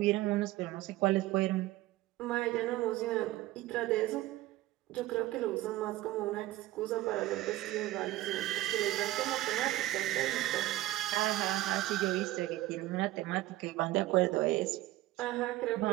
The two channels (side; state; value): left; quieter; 16.6 dB